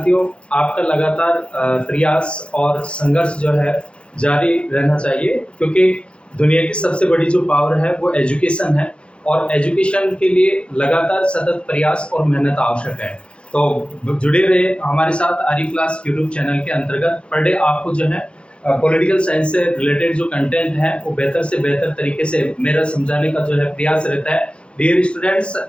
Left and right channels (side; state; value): right; late; 0.058 ms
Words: आपका लगातार प्रयास और संघर्ष जो है जारी रहना चाहिए, क्योंकि दुनिया की सबसे बड़ी जो पावर है वो एजुकेशन है और एजुकेशन के लिए लगातार सतत प्रयास और मेहनत आवश्यक है। तो जुड़े रहे हमारे साथ आर्य क्लास यूट्यूब चैनल के अंतर्गत। पर डे आपको जो है पॉलिटिकल साइंस से रिलेटेड जो कंटेंट है वो बेहतर से बेहतर तरीके से मेरा समझाने का जो है प्रयास रहता है। डियर स्टूडेंट्स,